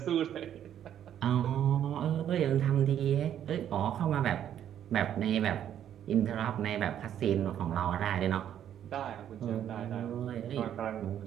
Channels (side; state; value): left; quieter; 10.2 dB